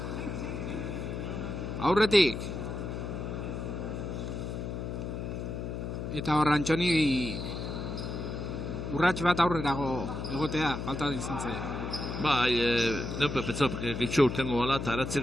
aurretik. Eta hor Antxoni urrats bat aurrerago egotea, falta izan zaio. Bai, neupe petzau gehitxo urtengo bala eta aratzek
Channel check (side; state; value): left; noise; hum, 5 dB below the sound